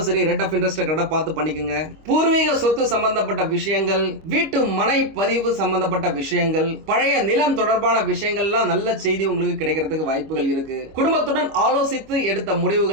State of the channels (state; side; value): late; left; 25 ms